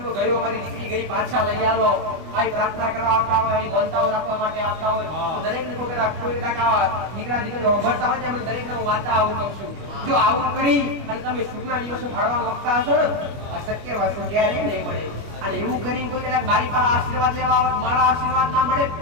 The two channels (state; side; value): late; left; 25 ms